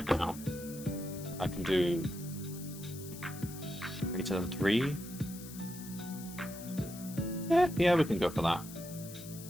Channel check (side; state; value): left; noise; hiss, 14 dB below the sound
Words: now. I can do greater than 3. Yeah, we can go for that.